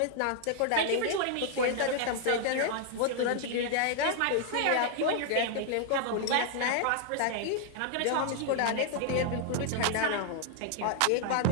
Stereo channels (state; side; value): different; both; correlation 0.00